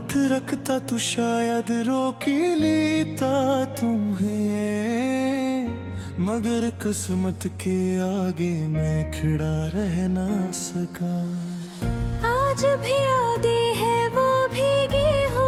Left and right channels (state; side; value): identical; both; correlation 1.00